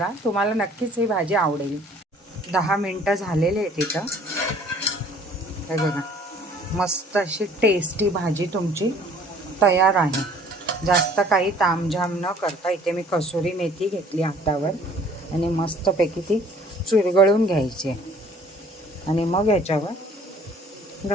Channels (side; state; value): both; normal; correlation 0.55